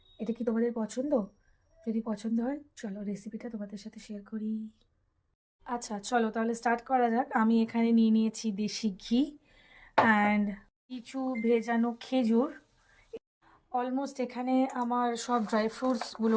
এটা কি তোমাদের পছন্দ? যদি পছন্দ হয় চলো রেসিপিটা তোমাদের সাথে শেয়ার করি। আচ্ছা চলো তাহলে স্টার্ট করা যাক। আমি এখানে নিয়ে নিয়েছি দেশি ঘি অ্যান্ড কিছু ভেজানো খেজুর। অলমোস্ট এখানে আমার সব ড্রাই ফ্রুটসগুলো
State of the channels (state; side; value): identical; both; correlation 1.00